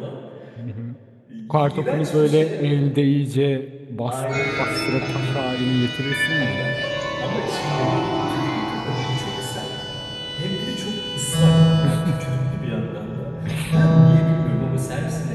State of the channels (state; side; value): identical; both; correlation 1.00